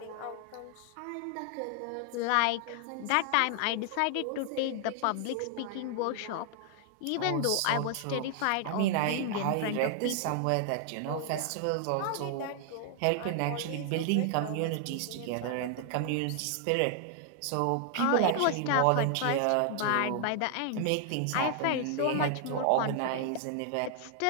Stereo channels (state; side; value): different; both; correlation 0.00